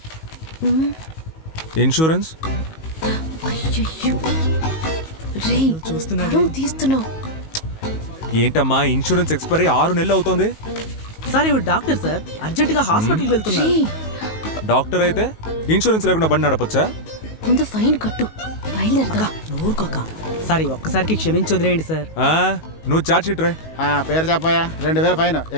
ఇన్సూరెన్స్ అయ్యయ్యో. రేయ్, పరువు తీస్తున్నావు. ఏంటమ్మా ఇన్సూరెన్స్ ఎక్స్పైరీ 6 నెలలు అవుతోంది. సార్ ఇవి డాక్టర్ సార్, అర్జెంట్ గా హాస్పిటల్కి వెళ్తున్నారు. రేయ్, డాక్టర్ అయితే ఇన్సూరెన్స్ లేకుండా బండి నడపొచ్చా? ముందు ఫైన్ కట్టు, బయలుదేరదా. నోరుకోక సార్, ఈ ఒక్కసారికి క్షమించి వదిలేయండి సార్. నువ్వు చార్జ్ షీట్ రాయ్. పేరు చెప్పాయా? 2000 ఫైన్.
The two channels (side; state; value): right; late; 19 ms